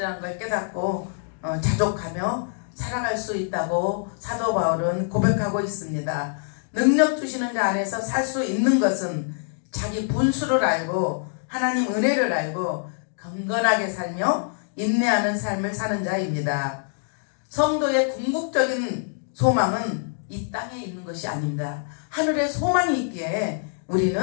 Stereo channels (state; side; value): silent; right; digital silence